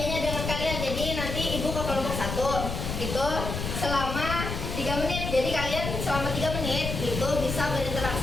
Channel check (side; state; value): left; noise; rumble, 4 dB below the sound